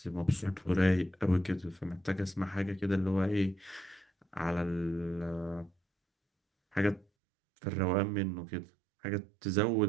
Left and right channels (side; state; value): left; drops out; at 7.1 s